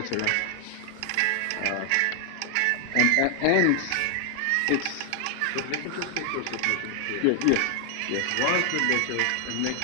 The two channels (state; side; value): different; both; correlation 0.00